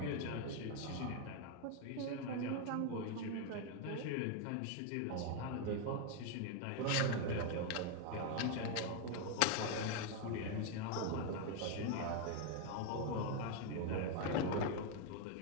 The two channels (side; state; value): both; different; correlation 0.01